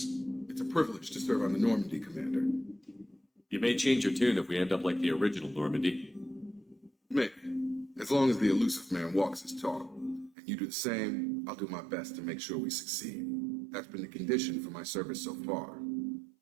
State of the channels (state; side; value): drops out; left; at 10.4 s